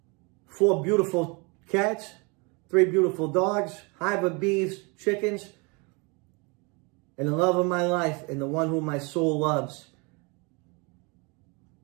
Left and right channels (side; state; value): left; quieter; 30.2 dB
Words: 4 beautiful cats. 3 beautiful dogs, hive of bees, chickens, and the love of my life and the one whom my soul loves,